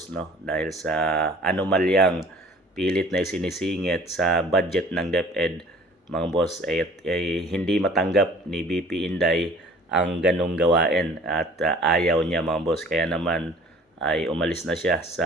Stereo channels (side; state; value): both; normal; correlation 0.49